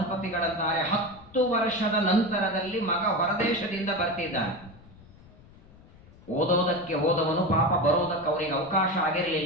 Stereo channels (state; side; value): noise; left; rumble, 23 dB below the sound